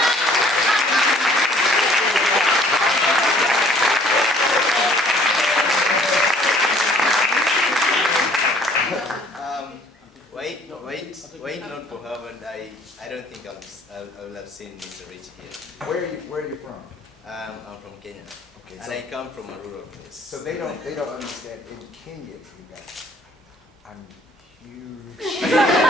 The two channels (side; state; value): both; normal; correlation 0.57